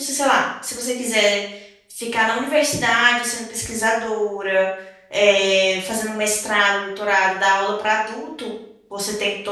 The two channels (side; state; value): both; identical; correlation 1.00